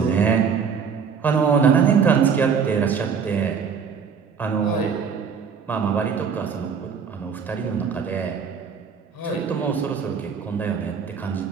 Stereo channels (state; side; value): quieter; left; 6.4 dB